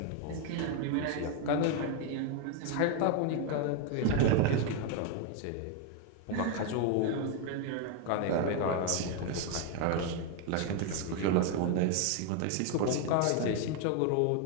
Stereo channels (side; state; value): both; different; correlation 0.01